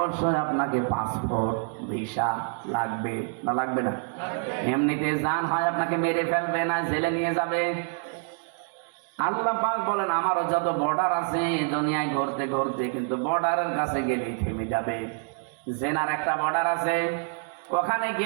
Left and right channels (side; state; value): left; silent; 58 dB below the other